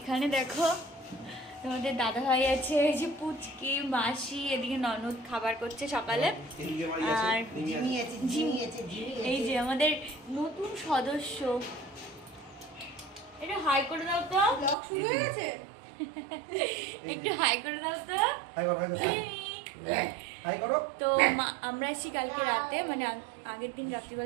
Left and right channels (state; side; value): drops out; left; at 14.8 s